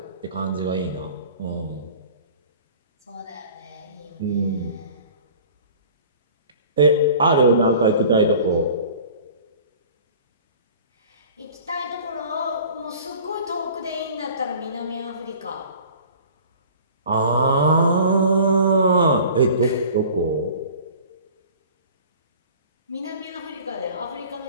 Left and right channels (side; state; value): both; inverted; correlation -0.45